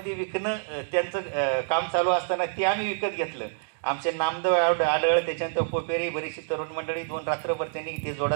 विकणं त्यांचं काम चालू असताना ते आम्ही विकत घेतलं. आमचे नामदेव आढळ, त्याच्यानंतर पोपेरी, बरीचशी तरुण मंडळी 2 रात्रभर त्यांनी ते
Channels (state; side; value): silent; left; digital silence